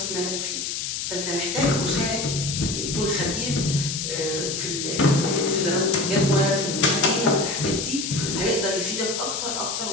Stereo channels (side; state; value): left; noise; hiss, 3 dB below the sound